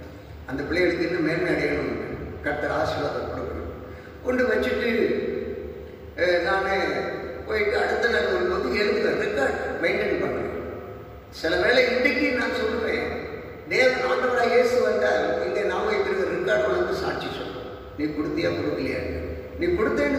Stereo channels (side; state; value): both; identical; correlation 1.00